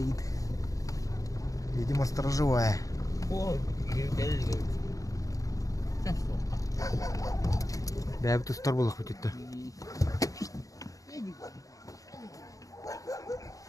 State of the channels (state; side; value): late; right; 0.17 ms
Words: Видимо, сторожевая. Да, это сторожевая хоть-то.